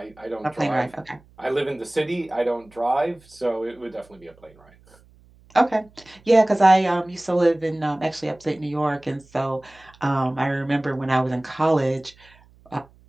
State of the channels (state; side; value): noise; right; hum, 28 dB below the sound